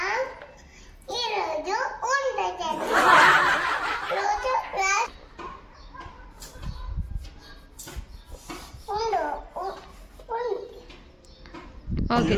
ఈరోజు ఉండదు రోజు ఓకే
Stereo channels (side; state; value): both; identical; correlation 1.00